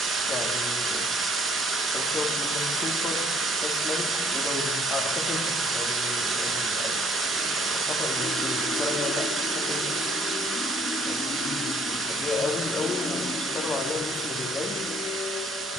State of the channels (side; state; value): both; normal; correlation 0.61